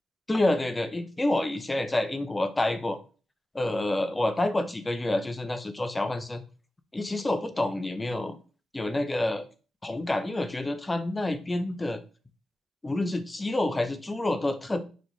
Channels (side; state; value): both; normal; correlation 0.95